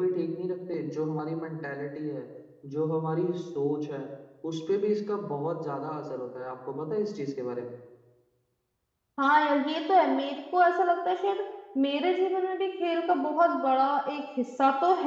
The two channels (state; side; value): identical; both; correlation 1.00